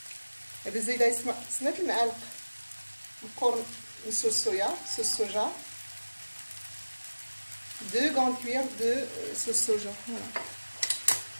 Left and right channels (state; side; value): inverted; both; correlation -1.00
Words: بالزايده سمات المعالق القرن من صوص soja 2 grandes cuillères de sauce soja. Voilà.